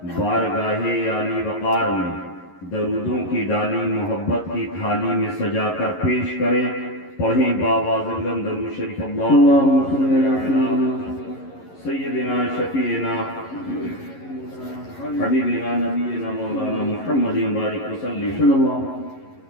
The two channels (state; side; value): late; right; 11 ms